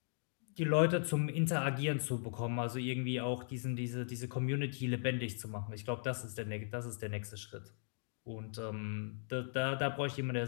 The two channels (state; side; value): silent; right; digital silence